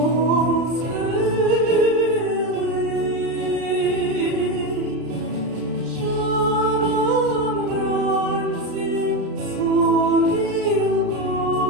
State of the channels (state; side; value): late; left; 33 ms